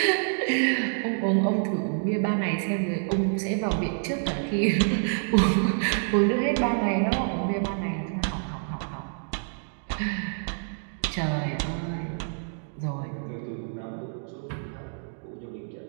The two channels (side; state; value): left; silent; digital silence